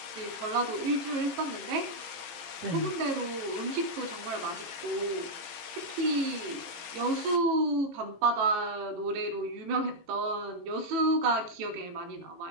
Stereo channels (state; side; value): late; left; 18 ms